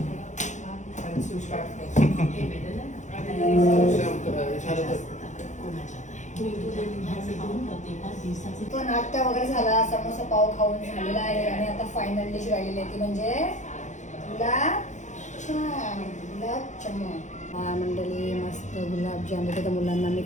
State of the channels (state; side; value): late; right; 0.35 ms